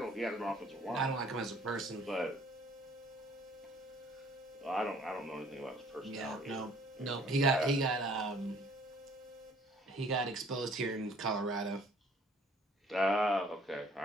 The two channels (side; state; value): both; normal; correlation 0.57